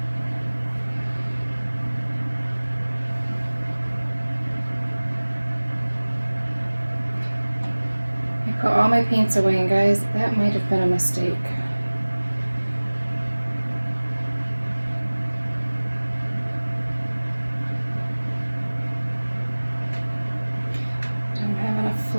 I put all my paints away, and guys, that might have been a mistake. Don't have enough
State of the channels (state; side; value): inverted; both; correlation -1.00